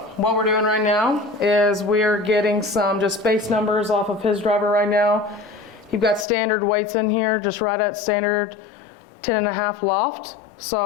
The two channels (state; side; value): drops out; right; at 6.2 s